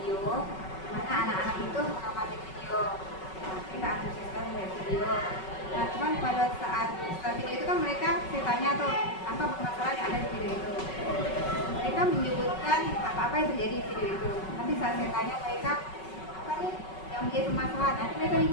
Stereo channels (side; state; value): right; late; 5.3 ms